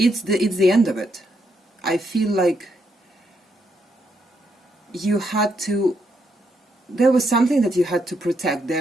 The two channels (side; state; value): both; normal; correlation 0.77